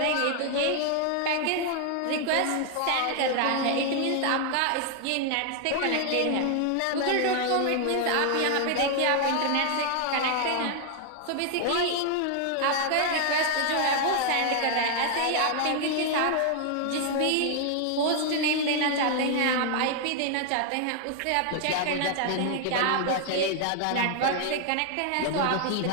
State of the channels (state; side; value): different; both; correlation 0.00